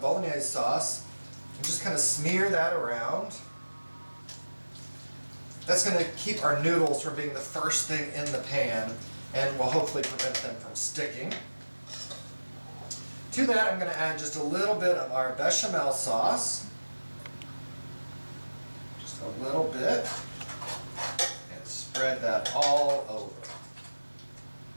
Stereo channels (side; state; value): both; inverted; correlation -1.00